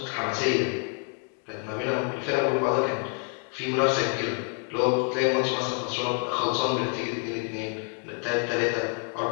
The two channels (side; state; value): right; quieter; 38.0 dB